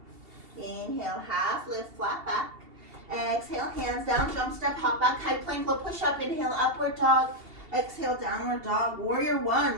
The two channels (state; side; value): late; left; 2.7 ms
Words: Inhale, half lift, flat back. Exhale, hands down, jump step, hop back, high plank, low push up. Inhale, upward dog. Exhale, downward dog. Warrior 1,